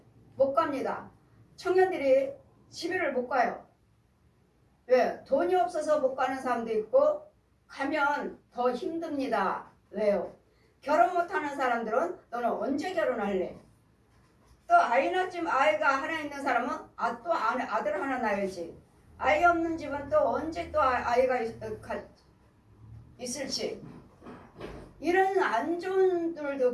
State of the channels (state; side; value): identical; both; correlation 1.00